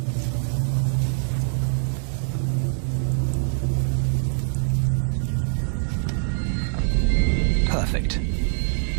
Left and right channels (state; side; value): silent; left; digital silence